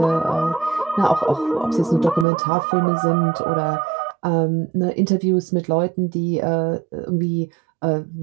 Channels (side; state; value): left; drops out; at 2.2 s